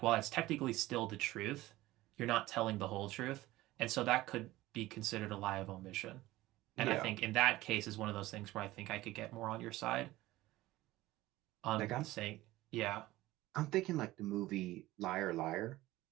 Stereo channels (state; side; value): quieter; left; 17.5 dB